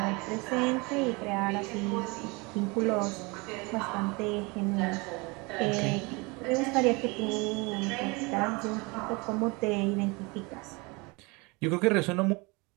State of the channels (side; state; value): left; quieter; 27.0 dB